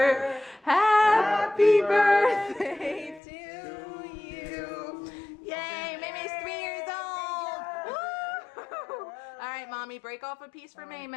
Happy birthday to you. Yay, May May's 3 years old. Woo! All right, Mommy, break off a piece for May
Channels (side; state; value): right; drops out; at 3.2 s